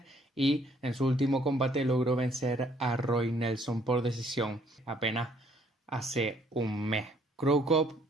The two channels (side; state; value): both; normal; correlation 0.64